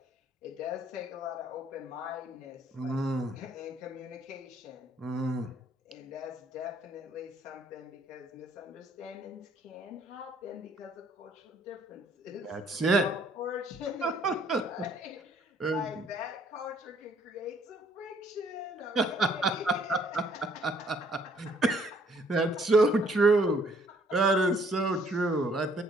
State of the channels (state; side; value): normal; both; correlation 0.63